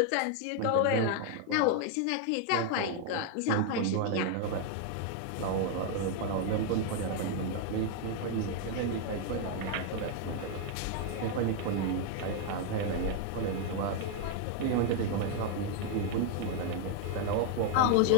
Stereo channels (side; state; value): both; different; correlation 0.00